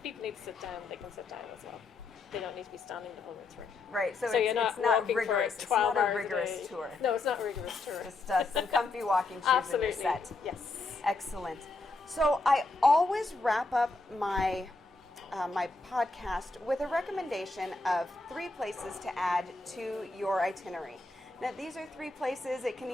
people need to sit down, they can sit down as well. They don't need to be standing the whole way through. get. Right. So you're it's not walking rigorous. for It's 12 not a hours rigorous day. tour. No, it's not a rigorous tour. Just some comfy walking shoes and Absolutely. you're set. Yes. Excellent. So I always wrap up my my podcast with a recommendation of 3 places to add to your itinerary. Now these are 3 places. It can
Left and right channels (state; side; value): quieter; right; 3.5 dB